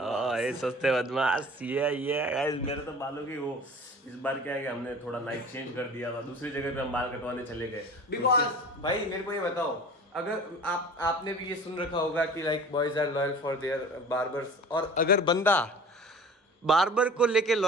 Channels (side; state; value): both; normal; correlation 0.42